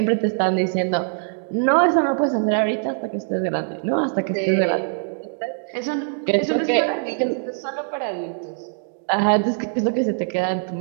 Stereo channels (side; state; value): left; silent; digital silence